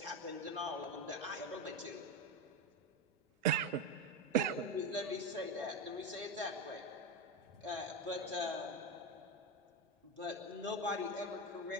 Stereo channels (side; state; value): both; normal; correlation 0.15